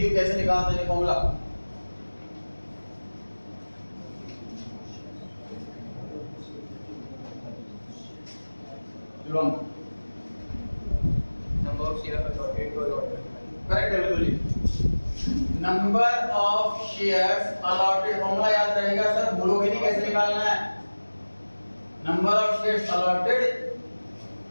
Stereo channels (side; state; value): both; inverted; correlation -1.00